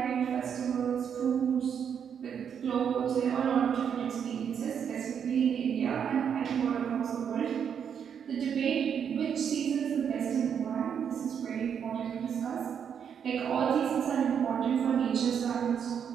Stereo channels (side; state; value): left; quieter; 7.8 dB